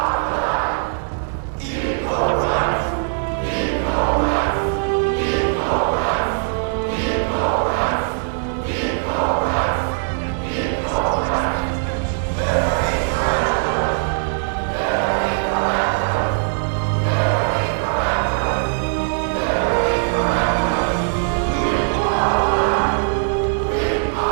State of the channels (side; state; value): left; silent; digital silence